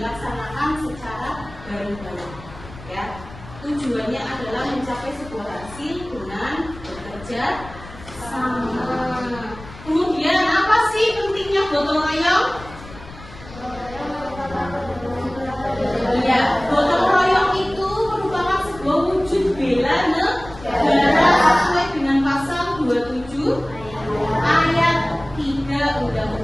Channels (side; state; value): left; noise; rumble, 17 dB below the sound